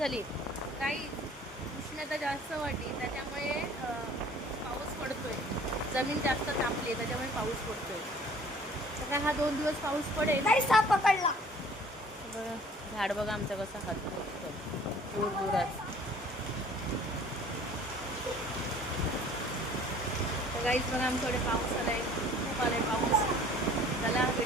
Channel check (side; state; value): both; normal; correlation 0.51